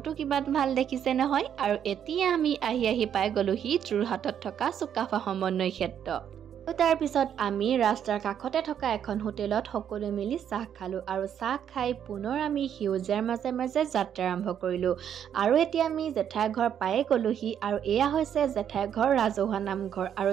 কিমান ভাল দেখিছে নহয়। আৰু এতিয়া আমি আহি পাই গলোহি যোৰহাটত থকা চুকাফা সমন্বয় ক্ষেত্ৰ। তাৰ পিছত আমি ৰাস্তাৰ কাষতে থকা এখন হোটেলত সকলো মিলি চাহ খালো আৰু চাহ খাই পুনৰ আমি সেউজীয়াৰ মাজে মাজে যাত্ৰা আৰম্ভ কৰিলো। আৰু এতিয়া আমি জেঠাই ঘৰ পায়ে গলোহি আৰু এয়া হৈছে জেঠাই ঘৰ ৰাজহুৱা নামঘৰ। আৰু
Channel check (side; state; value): left; quieter; 9.1 dB